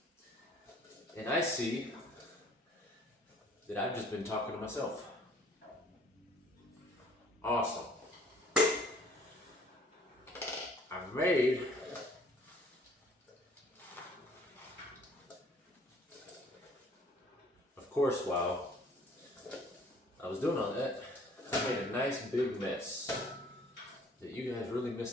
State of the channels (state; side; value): normal; both; correlation 0.57